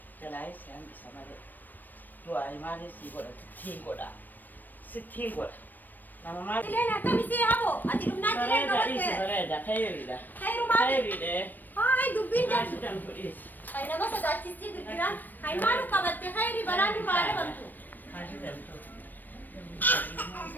Jalaa isaan isa malee. Du'aa maaliif sii godha? Sittiin godha. Sittiin godha. Nama maal? Tileen akkamisii habo? Ati dhumnaa tileen Bareeda, bareeda, khayriidha. Khayru maali? Khayriidha. Haay dubbiin Maal jedhu. sidan fudhiis? Ay nama sodaachistii girgiraan. Hay maalu qabatte khayri balaan duraa dhabantu. Maal sidan fudhiis?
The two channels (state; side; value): late; right; 0.090 ms